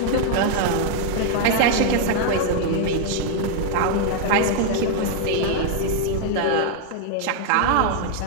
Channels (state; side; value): different; both; correlation 0.00